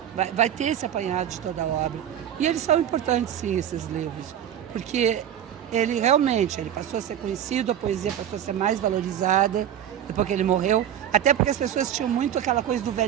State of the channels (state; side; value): quieter; left; 10.1 dB